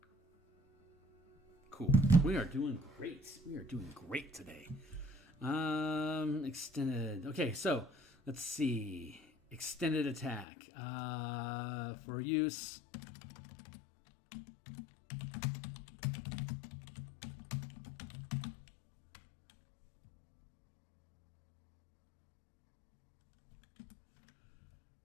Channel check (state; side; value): drops out; right; at 10.5 s